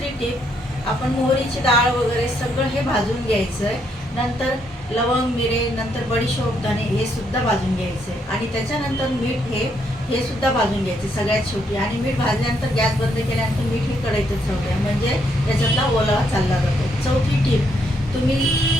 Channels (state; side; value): normal; both; correlation 0.74